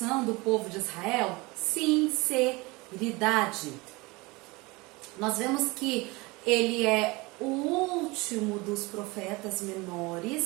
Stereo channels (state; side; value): quieter; left; 24.1 dB